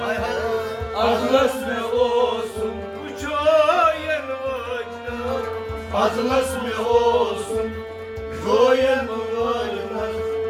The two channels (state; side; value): identical; both; correlation 1.00